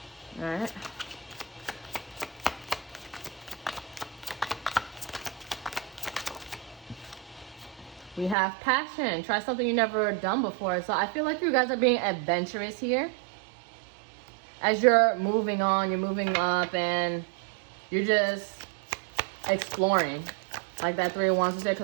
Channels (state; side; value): drops out; left; at 8.3 s